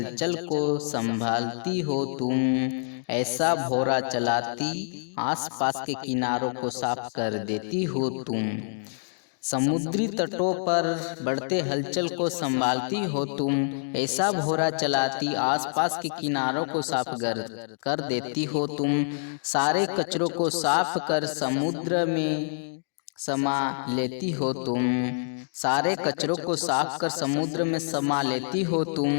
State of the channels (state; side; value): silent; right; digital silence